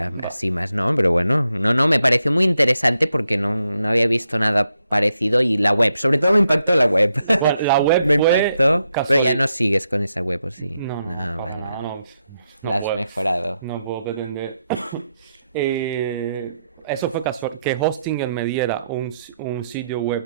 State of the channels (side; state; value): both; inverted; correlation -0.82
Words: Vale. así más, ¿no? Pero bueno, no, me pareció muy interesante porque no había visto nada parecido y la web, sobre todo me impactó la web. Bueno, la web Me fue impactó, pero casual. ya no sigues con esa web, ¿o sí? No, Ah, para vale, nada, vale. no La has puedo. mejorado. No puedo pretender. Eso fue casual. Que Hostinger me diera un sitio